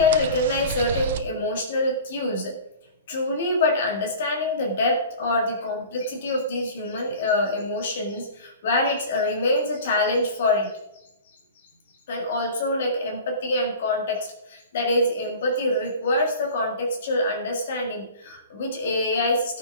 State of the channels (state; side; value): inverted; both; correlation -0.40